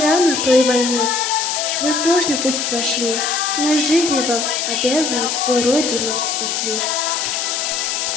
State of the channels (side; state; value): left; noise; hiss, 2 dB below the sound